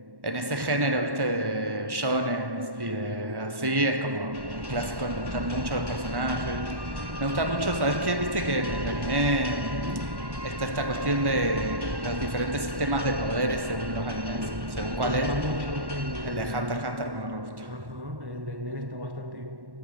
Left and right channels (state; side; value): late; left; 1.1 ms